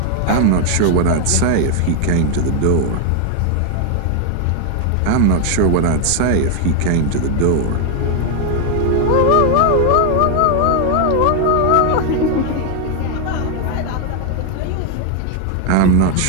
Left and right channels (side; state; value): both; different; correlation 0.01